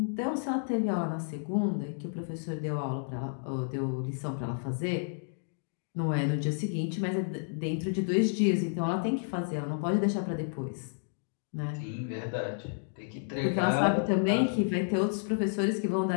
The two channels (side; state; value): right; silent; digital silence